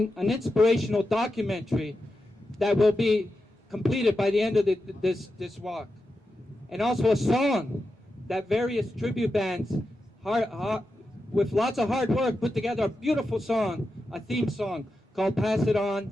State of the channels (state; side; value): normal; both; correlation 0.89